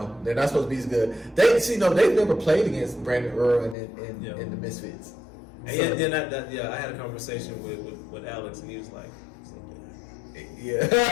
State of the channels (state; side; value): drops out; right; at 3.8 s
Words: They're not supposed to be as good. They've never played against Brandon Irwin and the Misfits. And I had a conversation with Alex, and he was like, Yeah.